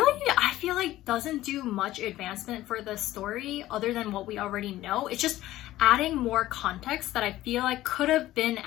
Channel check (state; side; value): quieter; right; 15.3 dB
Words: I feel like, doesn't do much advancement for the story other than what we already know. It's just adding more context that I feel like could have been